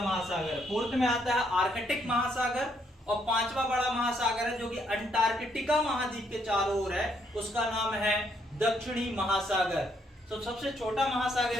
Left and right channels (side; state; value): both; normal; correlation 0.72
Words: फोर्थ में आता है आर्कटिक महासागर, और 5वां बड़ा महासागर है जो कि अंटार्कटिका महाद्वीप के चारों ओर है, उसका नाम है दक्षिणी महासागर। तो सबसे छोटा